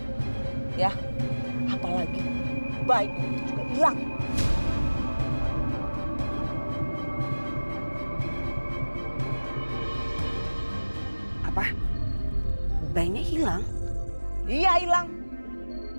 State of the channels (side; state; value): both; inverted; correlation -1.00